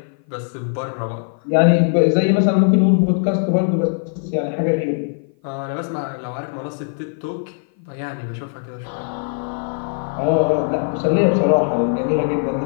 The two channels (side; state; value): right; silent; 55 dB below the other